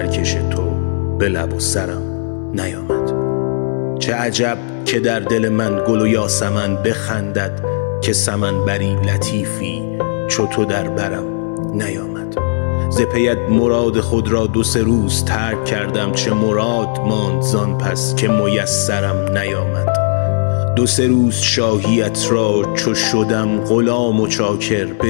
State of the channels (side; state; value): right; silent; digital silence